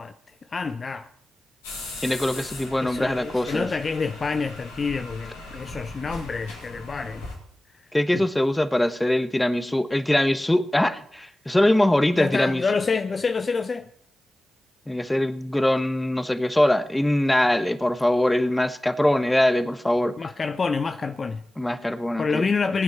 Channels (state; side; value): normal; both; correlation 0.97